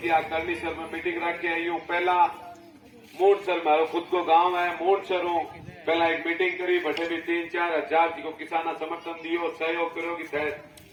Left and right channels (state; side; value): identical; both; correlation 1.00